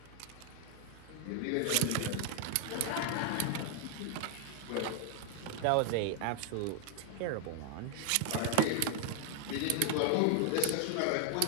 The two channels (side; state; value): both; different; correlation 0.00